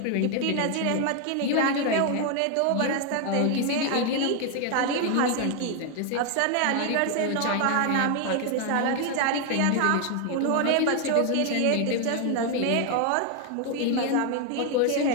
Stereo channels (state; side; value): different; both; correlation 0.01